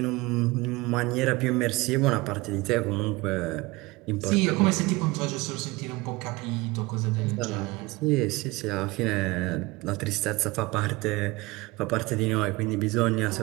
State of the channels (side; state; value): left; quieter; 22.2 dB